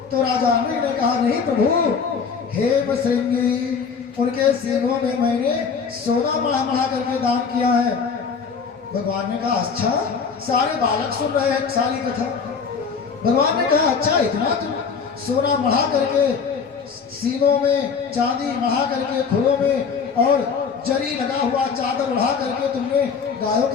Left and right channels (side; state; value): right; quieter; 5.8 dB